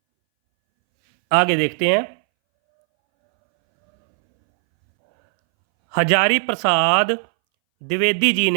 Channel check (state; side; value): silent; left; 65 dB below the other